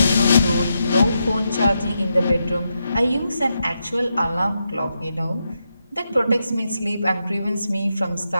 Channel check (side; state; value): both; inverted; correlation -0.85